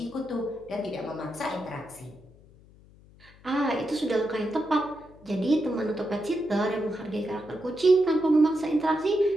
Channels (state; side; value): noise; left; hum, 25 dB below the sound